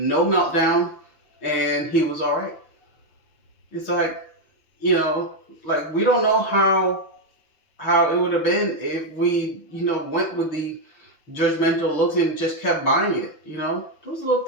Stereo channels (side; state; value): right; late; 6.4 ms